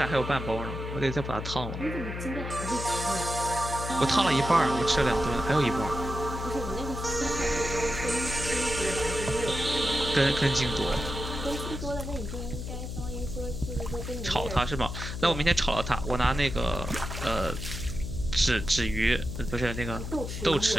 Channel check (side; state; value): left; noise; hum, 6 dB below the sound